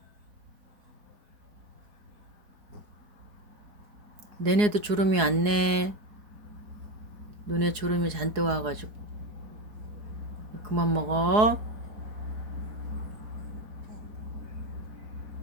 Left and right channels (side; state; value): left; late; 4.7 ms